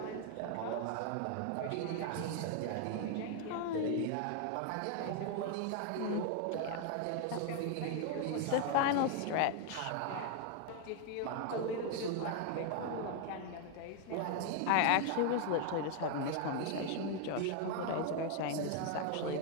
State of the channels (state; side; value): different; both; correlation 0.01